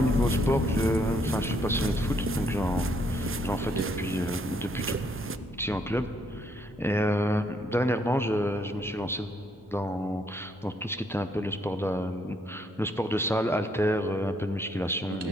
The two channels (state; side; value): normal; both; correlation 0.71